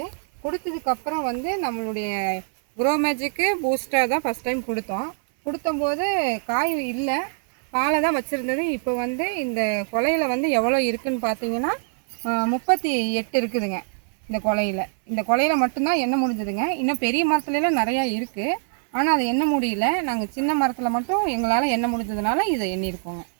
கொடுத்ததுக்கப்புறம் நம்மளுடைய க்ரோ மேஜிக்கு பூஸ்டர் தான் ஃபஸ்ட் டைம் கொடுத்தோம். கொடுத்தம்போது காய் இல்லை, பாலை தான் வச்சுருந்தது. இப்போ இந்த கொலையில் எவ்வளோ இருக்குதுன்னு பார்த்தீங்கன்னா 38 இருக்குதுங்க. இந்த கொலையில் மட்டும்தான் எண்ணெய் முடிஞ்சதுங்க. இன்னும் பெரிய மரத்துலலாம் நிறையா இருக்குது, ஆனால் அது எண்ண முடியல. நாங்கள் சின்ன மரத்தில் மட்டும் எங்களால் எண்ண முடிஞ்சதுனால இதை எண்ணியிருக்கோங்க.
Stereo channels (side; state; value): left; silent; 63 dB below the other